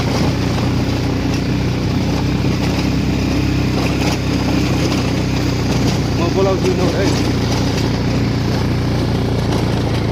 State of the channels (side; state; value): both; identical; correlation 1.00